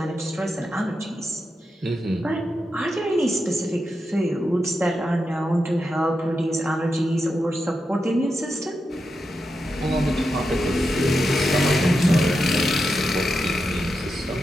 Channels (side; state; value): both; normal; correlation 0.87